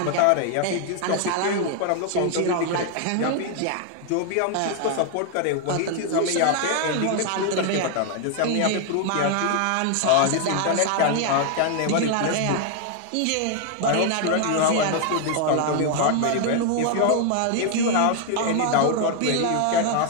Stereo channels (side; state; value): both; different; correlation 0.00